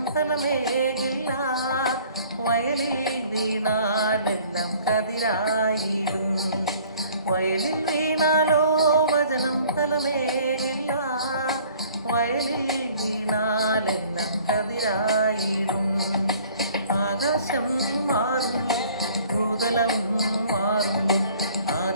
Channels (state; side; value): inverted; both; correlation -0.54